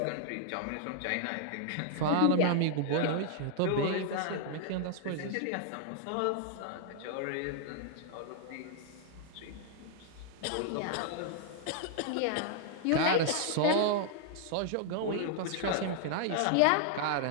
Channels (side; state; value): both; different; correlation -0.01